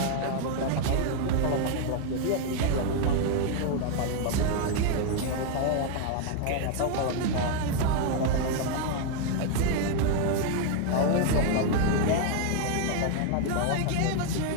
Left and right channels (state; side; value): different; both; correlation 0.00